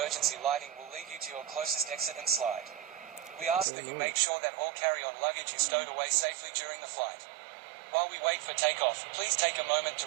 lighting will lead you to your closest exit and slide. We ask that you make sure that all carry-on luggage is stowed away safely during the flight. While we wait for takeoff, please take a moment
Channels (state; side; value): drops out; left; at 3.7 s